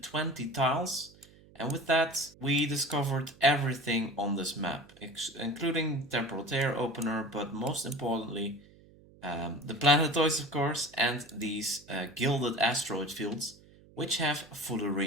tiles, and with that we discovered everything on this map, including temporal tear opener, but most importantly the planetoids, of course, and these gilded asteroid fields, which have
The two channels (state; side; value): noise; right; hum, 25 dB below the sound